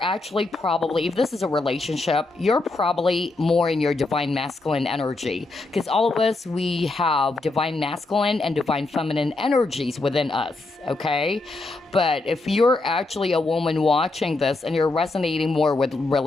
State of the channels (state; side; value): quieter; right; 3.2 dB